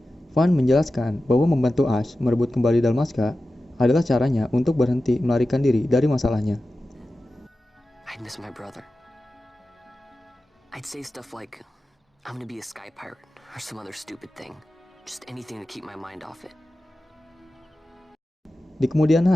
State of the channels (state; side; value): normal; both; correlation 0.94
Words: Van menjelaskan bahwa membantu Ash merebut kembali Dalmasca adalah caranya untuk berhenti melarikan diri dari masalahnya. I'd miss my brother. I'd say stuff like, I'm gonna be a sky pirate. Or some other stupid thing. Just anything to keep my mind off it. Di kemudian